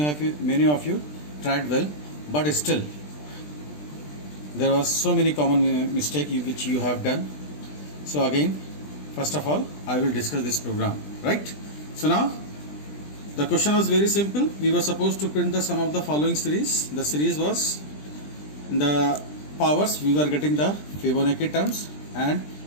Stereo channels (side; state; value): right; late; 20 ms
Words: tried well, but still there was so many common mistake which you have done. So again, first of all I will discuss this program, right? So now the question was very simple. We were supposed to print the sum of the following series. The series was in the powers we were getting the Fibonacci terms, and